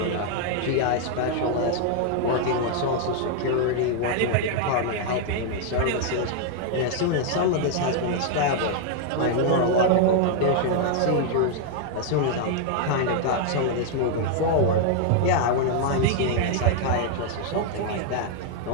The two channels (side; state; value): both; different; correlation 0.00